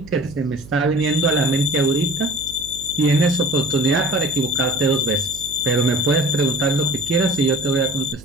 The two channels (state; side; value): noise; right; hum, 19 dB below the sound